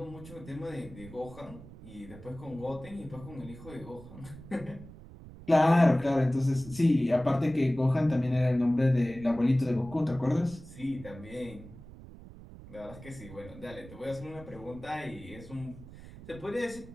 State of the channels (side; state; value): right; noise; rumble, 17 dB below the sound